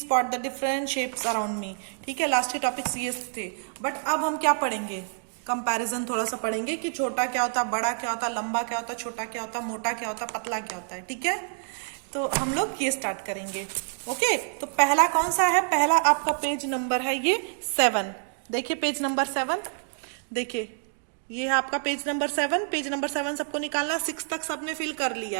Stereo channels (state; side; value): silent; left; 60 dB below the other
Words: the different shapes around me. ठीक है, लास्ट के टॉपिक्स ये थे. बट अब हम क्या पढ़ेंगे? कंपैरिजन थोड़ा सा पढ़ेंगे कि छोटा क्या होता है, बड़ा क्या होता है, लंबा क्या होता है, छोटा क्या होता है, मोटा क्या होता है, पतला क्या होता है. ठीक है, तो हम लोग ये स्टार्ट करेंगे. ओके, तो पहला कौन सा है? पहला आपका पेज नंबर है ये 7. देखिए पेज नंबर 7. देखिए ये है आपका पेज नंबर 7. पेज नंबर 7 सबको निकालना है. 6 तक सबने फिल कर